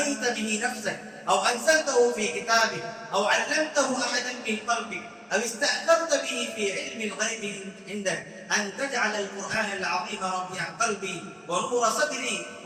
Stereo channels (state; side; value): identical; both; correlation 1.00